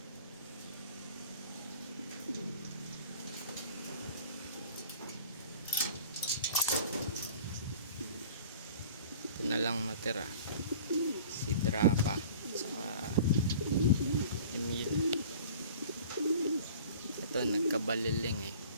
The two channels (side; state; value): both; inverted; correlation -0.45